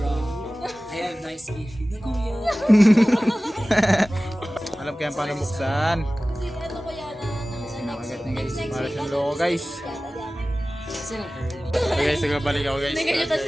I have nice gift. Nakuya. Alam ko yan paano buksan. Kasi ano ko yan Sinakagat niya guys. Para siyang loko guys. Kasi lang early. Okay guys, nagbabalik ako guys. Ganyan tayo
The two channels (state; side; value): normal; both; correlation 0.97